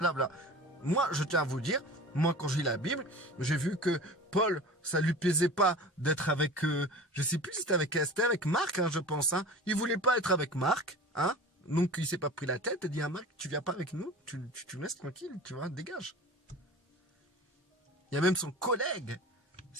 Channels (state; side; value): normal; both; correlation 0.37